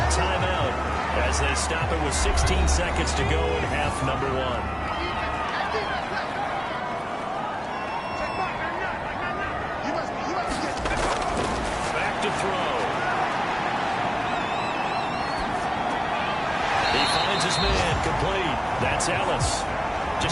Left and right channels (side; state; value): both; identical; correlation 1.00